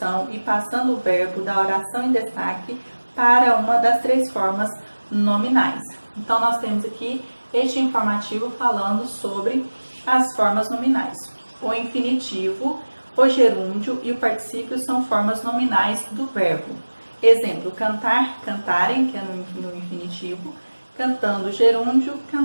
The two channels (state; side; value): inverted; both; correlation -1.00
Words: e passando o verbo da oração em destaque para uma das três formas nominais. Então, nós temos aqui este informativo falando sobre as formas nominais. O infinitivo, o gerúndio e o particípio são formas nominais do verbo. Exemplo: cantar, cantarem, que é no infinitivo, cantando, gerúndio,